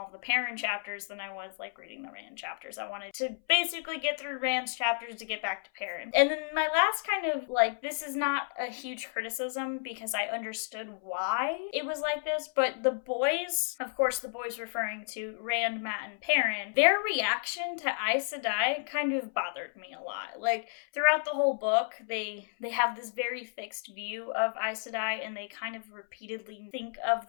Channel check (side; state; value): right; silent; 57 dB below the other